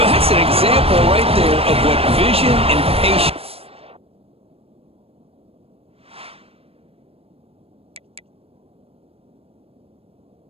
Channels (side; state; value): left; late; 0.28 ms